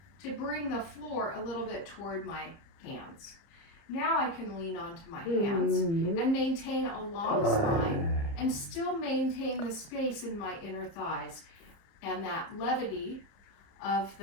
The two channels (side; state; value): right; late; 30 ms